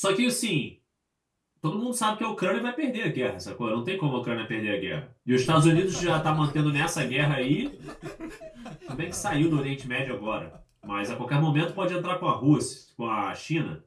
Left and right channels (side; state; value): both; identical; correlation 1.00